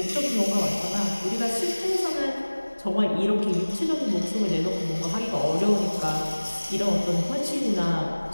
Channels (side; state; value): both; inverted; correlation -1.00